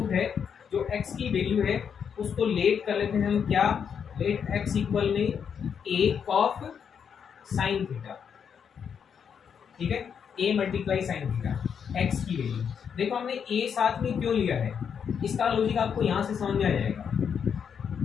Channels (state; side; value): quieter; right; 7.3 dB